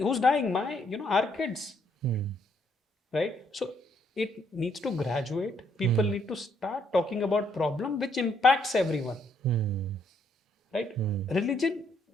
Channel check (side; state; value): both; normal; correlation 0.71